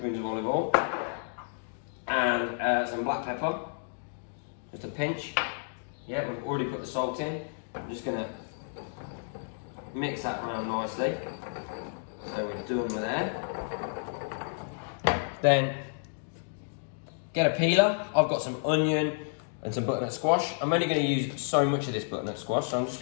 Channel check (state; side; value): silent; right; digital silence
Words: of olive oil, and some black pepper, just a pinch. Yeah, we've already put the salt in. I'm just going to mix that around nicely. So we're done with that. Then get a peeler. I've got some onion and some butternut squash. I'm only going to use so much of this butternut squash, so I'm just